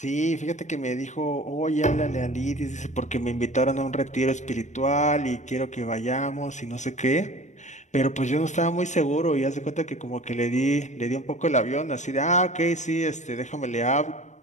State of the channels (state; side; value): late; right; 0.34 ms